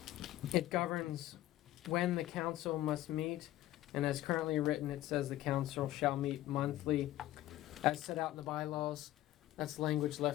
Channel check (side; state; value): right; quieter; 14.9 dB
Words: It governs when the council must meet, and as currently written, it says the council shall meet monthly as set out in the bylaws. That's language